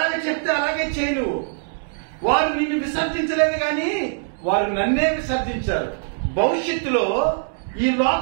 చెప్తే అలాగే చేయి నువ్వు. వారు నిన్ను విసర్జించలేదు కానీ వారు నన్నే విసర్జించారు. భవిష్యత్తులో ఈ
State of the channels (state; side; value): silent; left; 64 dB below the other